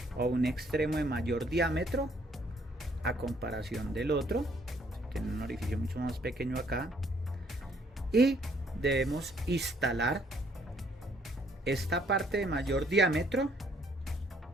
o un extremo de mayor diámetro a comparación del otro. Tiene un orificio mucho más pequeño acá, y debemos instalar esta parte de mayor diámetro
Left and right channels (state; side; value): normal; both; correlation 0.66